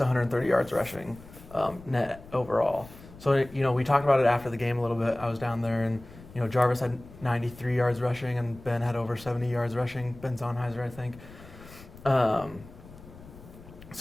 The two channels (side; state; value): left; noise; rumble, 19 dB below the sound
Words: yards rushing net overall. So we talked about it after the game a little bit. I was down there, and Jarvis had 93 yards rushing, and Ben had over 70 yards rushing. Ben Zonheiser, I think.